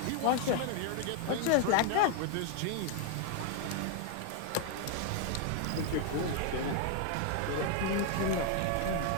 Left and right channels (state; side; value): different; both; correlation 0.00